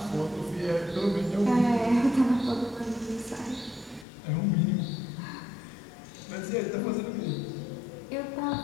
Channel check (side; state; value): right; drops out; at 4.0 s